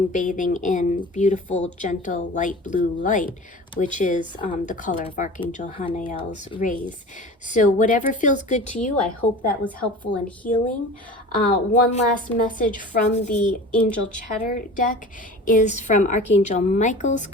bathing in beautiful, gentle, light blue light, which is the color of Archangel Hanael's rays. So whatever feels good to you, I hope that was helpful in healing. One last message from the Angel Chatter deck is from Archangel Michael's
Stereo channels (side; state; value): both; normal; correlation 0.38